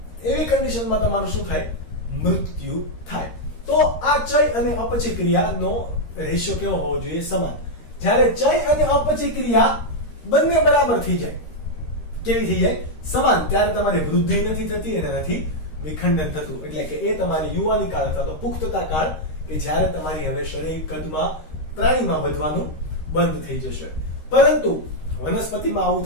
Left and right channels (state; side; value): late; right; 13 ms